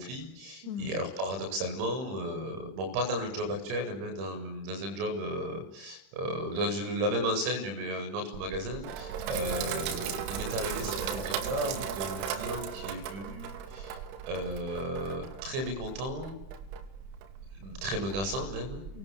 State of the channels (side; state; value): left; late; 31 ms